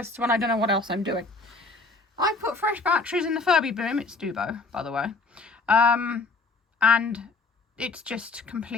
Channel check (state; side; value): quieter; right; 3.6 dB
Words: when I don't know what else I'm doing. I put fresh batteries in the Furby Boom. It's Doo-Boh, by the way, and it's just